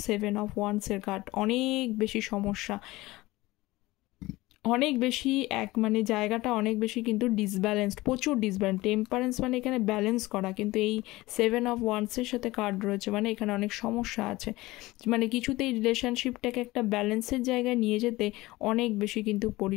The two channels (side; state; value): right; quieter; 19.5 dB